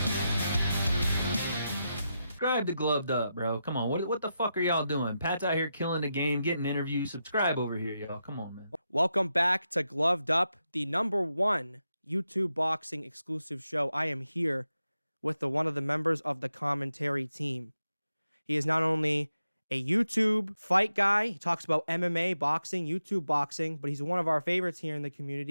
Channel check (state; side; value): inverted; both; correlation -0.87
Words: subscribe to Gloved Up, bro. Come on. What the fuck are y'all doing? Pat's out here killing the game, getting interviews. Subscribe over here, y'all. Come on, man. Welcome back to Gloved Up, the #1 YouTube boxing exclusive show. I am here with one of the members of the commentary team. He is not only a YouTube fight guy, he talks about MMA, boxing, YouTube boxing, but he's one of our favorites here in the